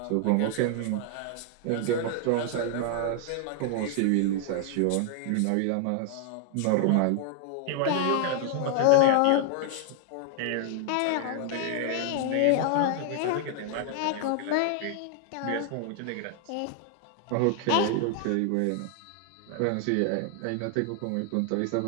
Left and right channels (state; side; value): different; both; correlation 0.00